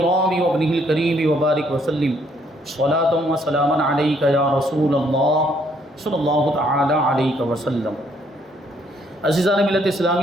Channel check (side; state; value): both; normal; correlation 0.68